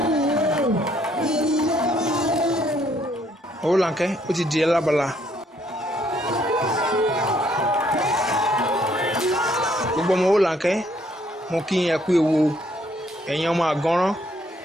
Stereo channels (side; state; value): both; normal; correlation 0.67